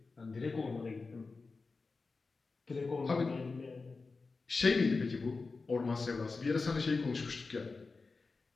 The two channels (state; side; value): quieter; right; 4.1 dB